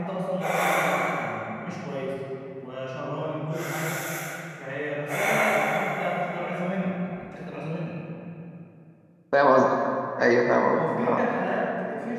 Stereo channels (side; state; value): both; identical; correlation 1.00